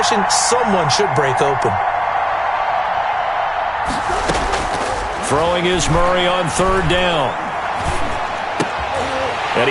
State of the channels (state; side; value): identical; both; correlation 1.00